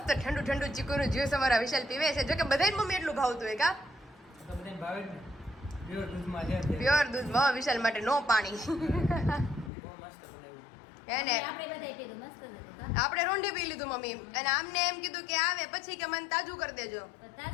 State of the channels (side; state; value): right; drops out; at 9.7 s